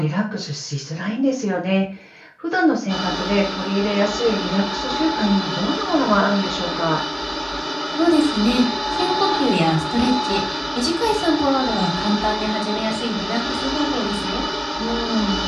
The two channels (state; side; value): identical; both; correlation 1.00